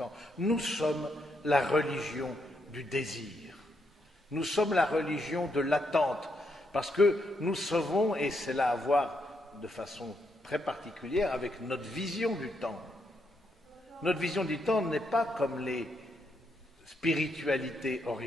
Nous sommes la religion du désir. Nous sommes la religion de l'attente. Parce que nous savons, et c'est là à voir de façon très particulière avec notre vision du temps. Notre vision du temps n'est pas comme les spiritualités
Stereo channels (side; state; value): both; normal; correlation 0.79